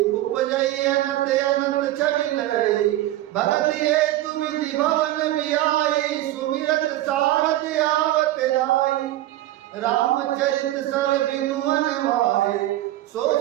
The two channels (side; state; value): left; quieter; 15.2 dB